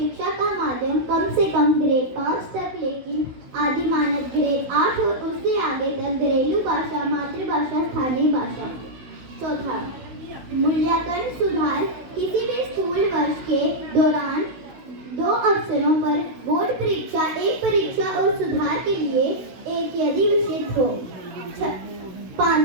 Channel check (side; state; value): left; late; 16 ms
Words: का माध्यम कम से कम ग्रेड 5 तक लेकिन आदि मानक ग्रेड 8 और उससे आगे तक घरेलू भाषा, मातृभाषा, स्थानीय भाषा। चौथा, मूल्यांकन सुधार, किसी भी स्कूल वर्ष के दौरान 2 अवसरों पर बोर्ड परीक्षा, एक परीक्षा और सुधार के लिए एक यदि विषय हो।